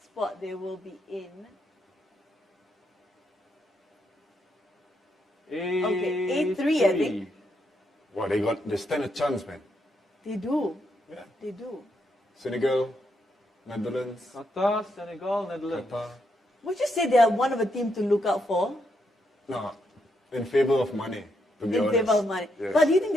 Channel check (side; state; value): both; normal; correlation 0.79